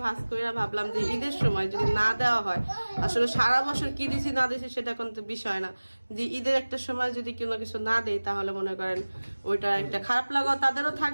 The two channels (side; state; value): both; inverted; correlation -1.00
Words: ভাস করে ভাবলাম যে ঈদের সময় যদি না দেওয়া হয়, আসলে সারা বছর কি দিছি না দিছি সেটা কিন্তু বিষয় না, যে ঈদের একটা সময় যদি কোনো কিছু না দেয় তাহলে মনে করেন ওইটা একটা খারাপ লাগা তাদেরও